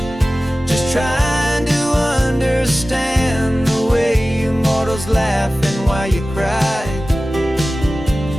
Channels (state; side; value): normal; both; correlation 0.96